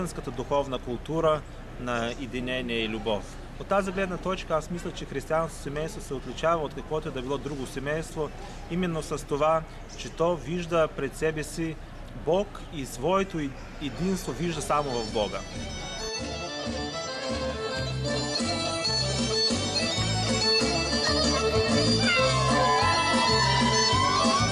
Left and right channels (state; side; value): identical; both; correlation 1.00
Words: духовна култура на единение и любов. От тази гледна точка аз мисля, че християнското семейство се отличава от каквото да било друго семейство, именно с това, че то вижда пред себе си Бог и своето единство вижда само в Бога.